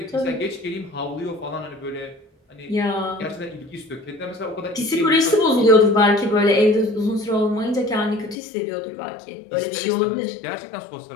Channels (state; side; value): drops out; right; at 8.3 s